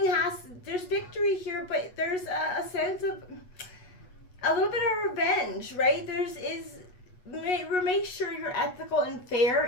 there's victory here, but there's a sense of a little bit of revenge, right? Make sure you're ethical and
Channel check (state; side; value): late; right; 8.2 ms